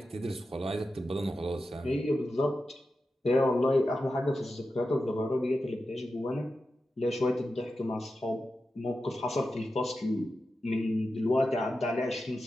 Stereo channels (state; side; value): normal; both; correlation 0.91